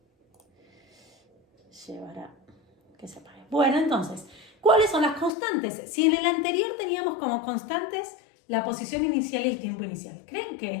llevar a que se apague. Bueno, entonces, ¿cuáles son las constantes? Si en el anterior teníamos como constantes la posición inicial y el tiempo inicial, ¿creen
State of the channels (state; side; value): drops out; right; at 5.3 s